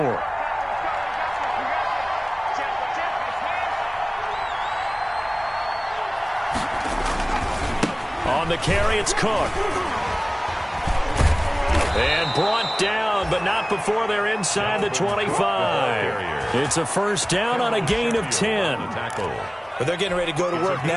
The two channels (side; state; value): both; identical; correlation 1.00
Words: On the carry, it's Cook. And brought down, but not before they're inside the 25. It's a first down on a gain of 10. But they're getting ready to go to work